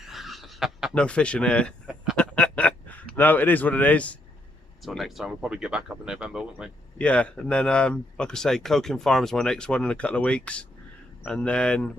No fishing here. No, it is what it is. Until next time, we'll probably get back up in November, won't we? Yeah, and then like I say, Coking Farm is my next one in a couple of weeks, and then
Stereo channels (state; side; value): normal; both; correlation 0.74